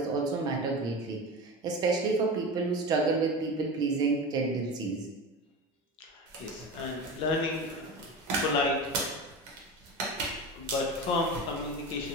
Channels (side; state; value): both; normal; correlation 0.27